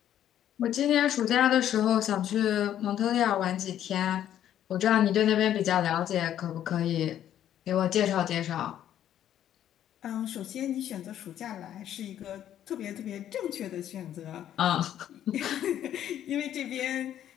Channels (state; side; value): quieter; right; 11.0 dB